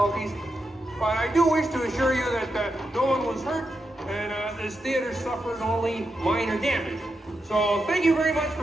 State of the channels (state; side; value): normal; both; correlation 0.86